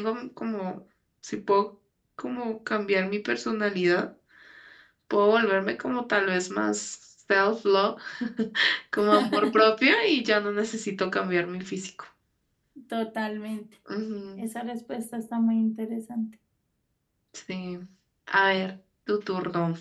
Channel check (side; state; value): both; identical; correlation 1.00